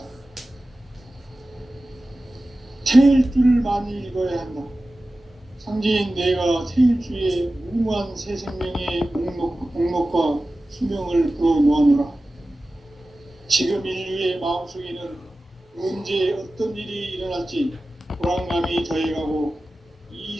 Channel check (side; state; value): both; normal; correlation 0.95